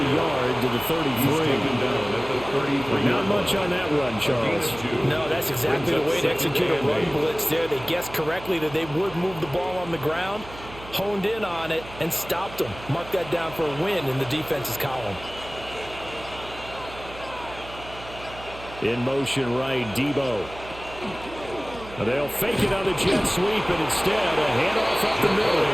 yard to the 33. Not much on that run, Charles. No, that's exactly the way to execute a run blitz there. They guessed correctly that they would move the ball on the ground, honed in on it, and stopped them. Mark that down for a win in the defense's column. In motion right, Debo. They'll fake it on the jet sweep, and instead a handoff up the middle.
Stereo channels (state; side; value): noise; right; hum, 16 dB below the sound